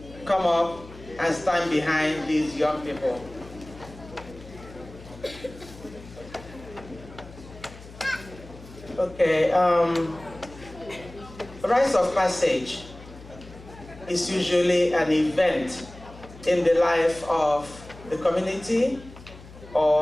come up and stand behind these young people. Okay, Rites of Passage is usually an event in the life of the community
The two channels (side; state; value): left; noise; hum, 18 dB below the sound